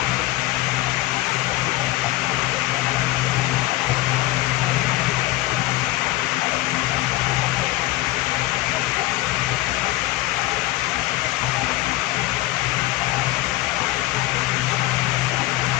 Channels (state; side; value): quieter; right; 17.5 dB